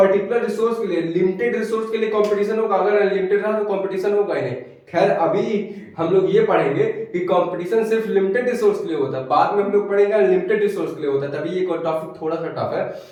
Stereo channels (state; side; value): identical; both; correlation 1.00